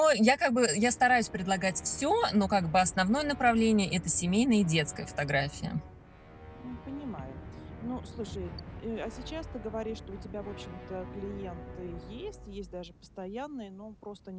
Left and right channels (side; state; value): both; identical; correlation 1.00